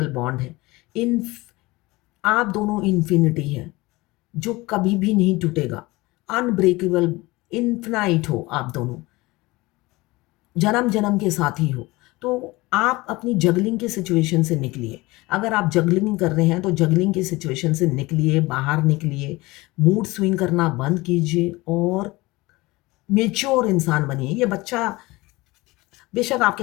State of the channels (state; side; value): quieter; right; 21.5 dB